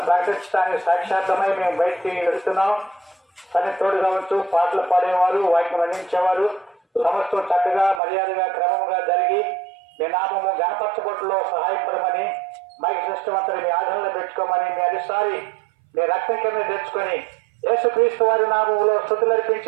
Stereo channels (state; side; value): drops out; left; at 8.0 s